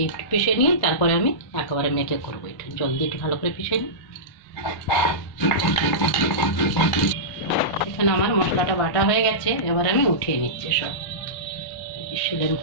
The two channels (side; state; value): right; late; 1.3 ms